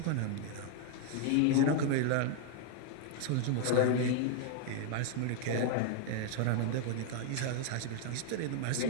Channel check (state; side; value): different; both; correlation 0.00